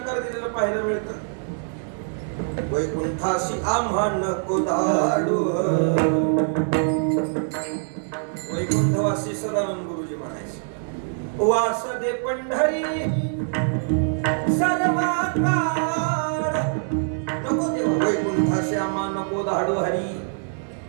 दिलेलं पाहायला मिळतं. वैकुंठाशी आम्हा नको धाडू. वैकुंठवासी सदानंद गुरुजी म्हणायचे, वास दे पंढरी सर्वा काळ. नको देवा वैकुंठाशी आम्हा नको धाडू हरी.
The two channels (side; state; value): left; silent; 63 dB below the other